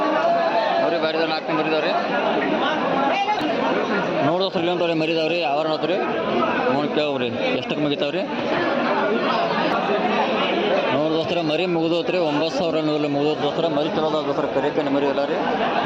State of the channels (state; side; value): identical; both; correlation 1.00